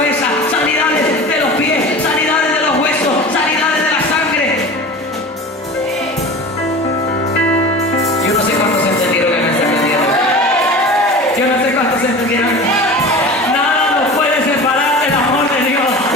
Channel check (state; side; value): normal; both; correlation 0.35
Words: se entendieran. Nada nos puede separar del amor de Dios.